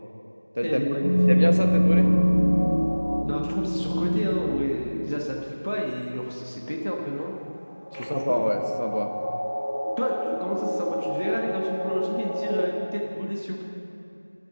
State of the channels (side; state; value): both; inverted; correlation -1.00